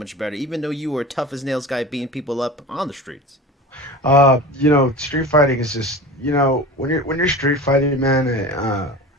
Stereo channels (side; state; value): both; normal; correlation 0.34